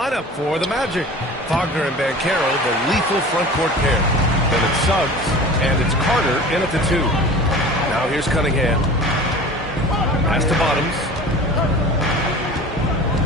for the Magic. Wagner and Banchero, the lethal front court pair. Then it's Suggs, and it's Carter in at the 2. Now here's Cunningham. Pass to Bottoms.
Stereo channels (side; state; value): both; normal; correlation 0.39